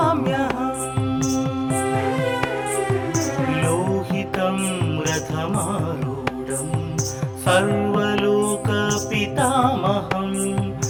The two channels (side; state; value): both; identical; correlation 1.00